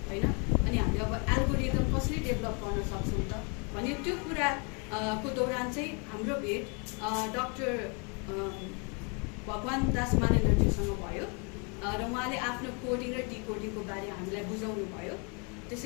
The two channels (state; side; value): quieter; right; 34.8 dB